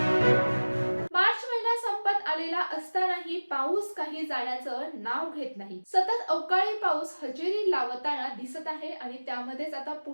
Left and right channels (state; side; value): inverted; both; correlation -1.00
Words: मार्च महिना संपत आलेला असतानाही पाऊस काही जाण्याचं नाव घेत नाही। सतत अवकाळी पाऊस हजेरी लावताना दिसत आहे आणि त्यामध्येच आता